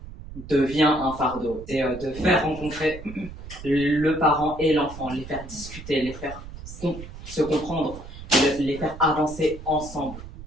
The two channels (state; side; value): noise; right; rumble, 13 dB below the sound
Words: devient un fardeau. C'est de faire rencontrer le parent et l'enfant, les faire discuter, les faire se comprendre, les faire avancer ensemble